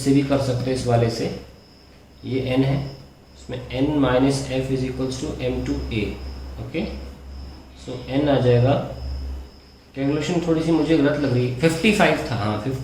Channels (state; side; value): identical; both; correlation 1.00